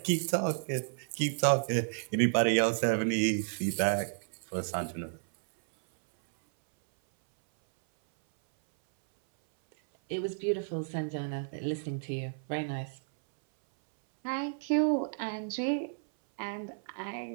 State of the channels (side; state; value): left; silent; 57 dB below the other